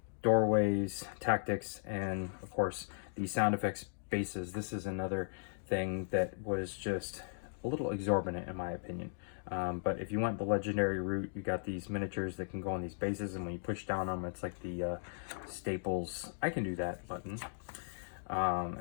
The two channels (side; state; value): right; silent; digital silence